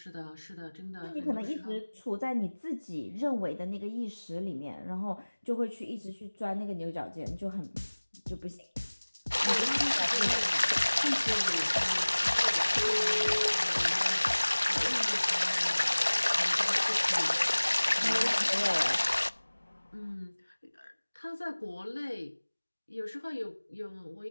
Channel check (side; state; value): both; inverted; correlation -1.00